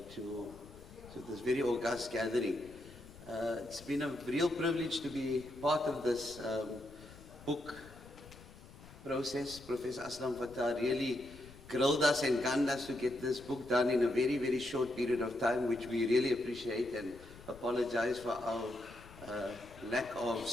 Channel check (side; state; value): left; noise; rumble, 19 dB below the sound